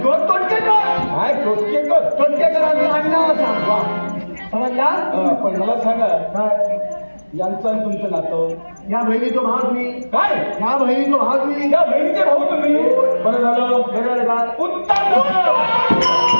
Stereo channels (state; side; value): inverted; both; correlation -1.00